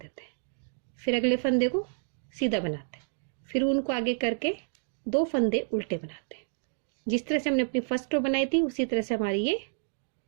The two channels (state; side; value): silent; left; digital silence